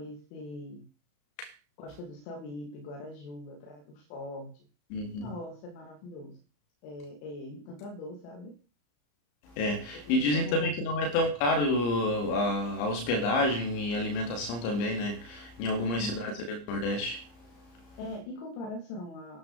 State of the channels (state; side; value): late; right; 34 ms